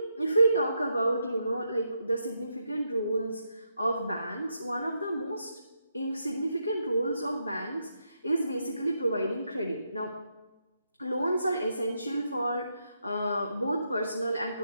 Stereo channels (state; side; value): inverted; both; correlation -0.81